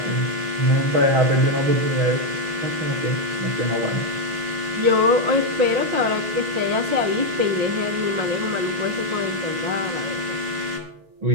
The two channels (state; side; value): late; left; 6.4 ms